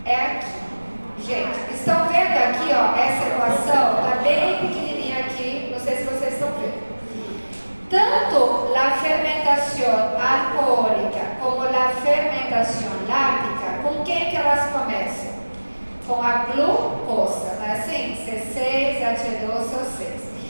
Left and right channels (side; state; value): both; inverted; correlation -1.00